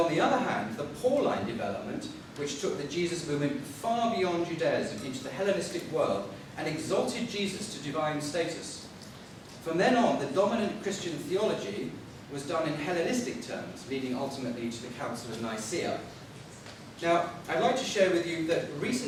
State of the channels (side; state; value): both; identical; correlation 1.00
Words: the other hand, the Pauline development, which took the Jesus movement far beyond Judaism into the Hellenistic world and exalted Jesus to divine status. From then on, the dominant Christian theology was done in Hellenistic terms, leading ultimately to the Council of Nicaea. Now, I'd like to share with you that